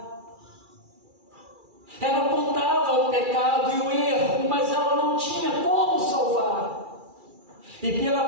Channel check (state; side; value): late; left; 2.4 ms